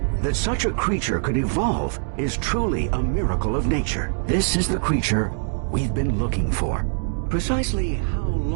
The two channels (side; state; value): left; silent; digital silence